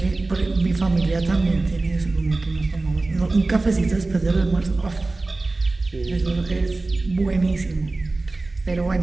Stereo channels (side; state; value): left; quieter; 3.3 dB